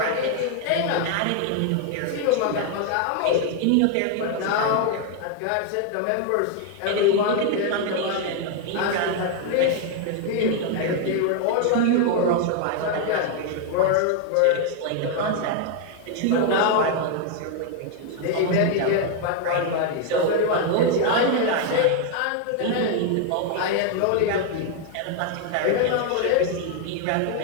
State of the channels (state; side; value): different; both; correlation 0.00